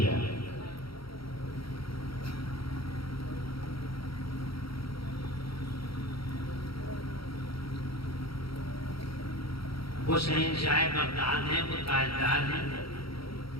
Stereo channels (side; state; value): right; late; 0.75 ms